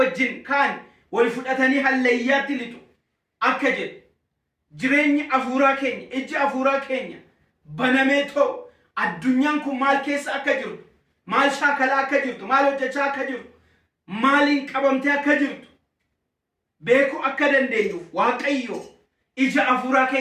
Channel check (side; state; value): both; identical; correlation 1.00